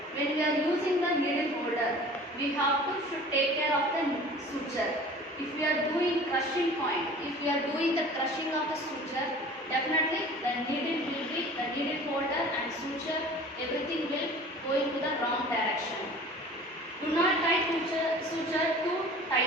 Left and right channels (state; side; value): normal; both; correlation 0.44